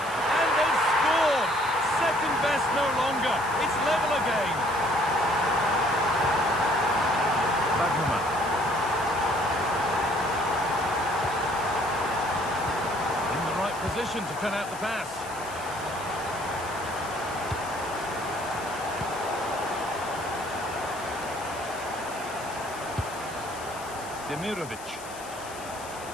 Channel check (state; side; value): noise; left; hiss, 16 dB below the sound